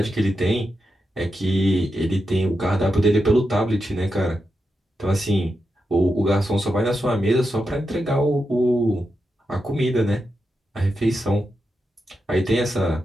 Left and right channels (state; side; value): normal; both; correlation 0.87